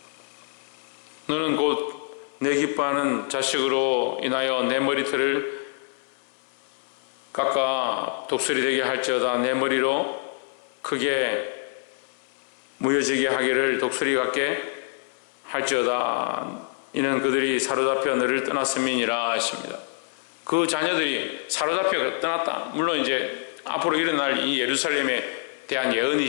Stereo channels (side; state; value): right; silent; 59 dB below the other